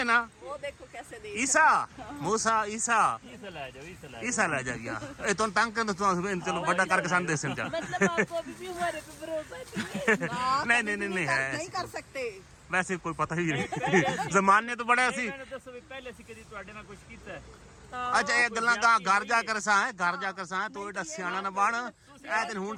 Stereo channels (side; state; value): both; identical; correlation 1.00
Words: ना। वो देखो कैसे देख ईसा मूसा ईसा ईसा ला जाइए। ए तो तंग कर चलो बड़ा करके संदेश समझा। मतलब आपको अभी भी हमारे पे भरोसा नहीं है? नहीं है, नहीं कर सकते। वैसे कोई पता ही नहीं। जमाने तो बड़े सी पहले से कदी ਤੁਹਾਡੇ ਨਾਲ ਕੁਝ ਕੀਤਾ ਹੈ? अच्छा ये गल्लां घर जाकर सा है, घर जाकर सा है तो एडा सियाना ना बन। ए दिन हुन